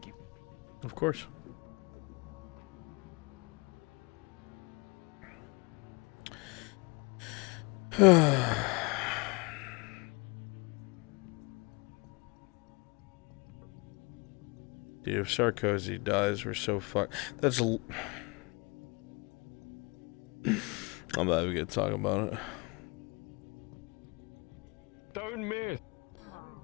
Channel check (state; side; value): quieter; right; 28.0 dB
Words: you. Of course. Dude, if Sarkozy dies, we're so fucked. That's I'm not even gonna talk about it. Don't miss.